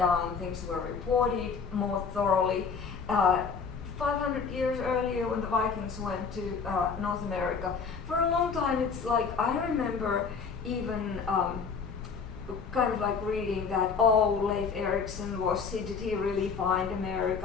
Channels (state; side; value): quieter; right; 5.6 dB